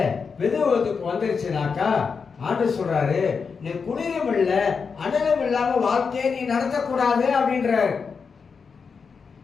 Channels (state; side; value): quieter; right; 5.5 dB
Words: வெதுவதுக்கு வந்துருச்சுனாக்கா ஆண்டவர் சொல்றாரு, நீ குளிரும் இல்ல அனலும் இல்லாம வாழ்க்கையை நீ நடத்தக்கூடாது அப்படின்றாரு.